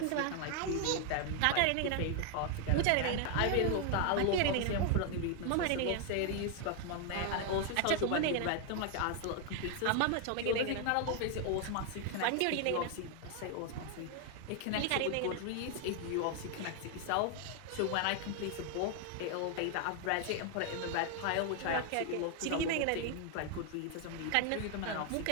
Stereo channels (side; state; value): both; different; correlation 0.00